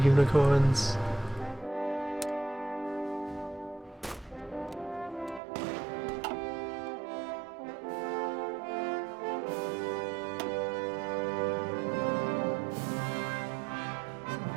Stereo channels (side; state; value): left; drops out; at 5.4 s